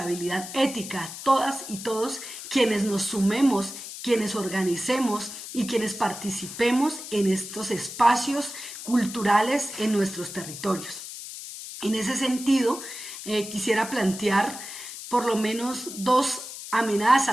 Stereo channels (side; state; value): left; noise; hiss, 10 dB below the sound